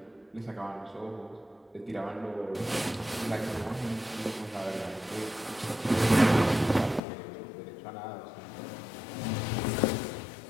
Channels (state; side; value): drops out; right; at 7.0 s